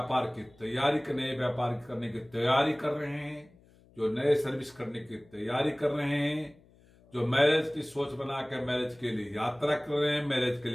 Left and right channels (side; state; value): left; noise; hum, 28 dB below the sound